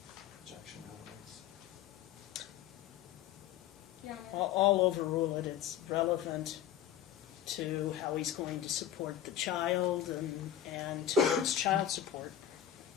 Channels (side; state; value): right; quieter; 10.9 dB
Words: Objection, relevance. Your Honor. I'll overrule it. It's relevant to how he's going to support the child and to his child support.